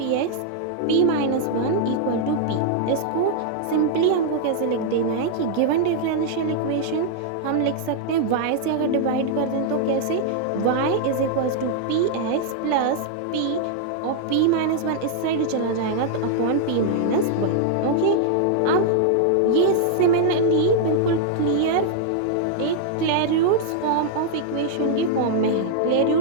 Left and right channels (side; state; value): both; different; correlation -0.01